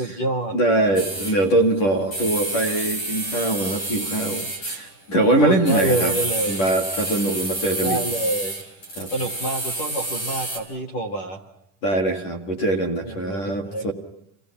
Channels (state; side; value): late; right; 10 ms